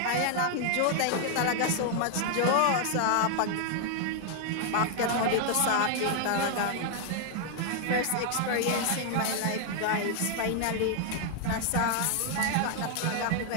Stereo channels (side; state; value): both; different; correlation 0.00